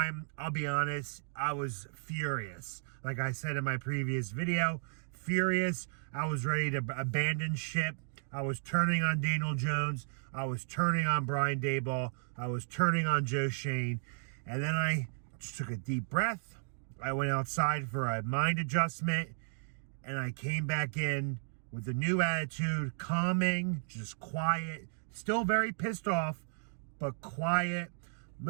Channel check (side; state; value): left; silent; digital silence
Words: I'll be honest, I was furious. Like I said in my previous video, furious. I was ready to abandon ship. I was turning on Daniel Jones. I was turning on Brian Daboll. I was turning on Joe Shane. And then I just took a deep breath. I went outside for a mind adjustment. And I came back in with a new attitude, calming, just quiet. Still very pissed off, but quiet.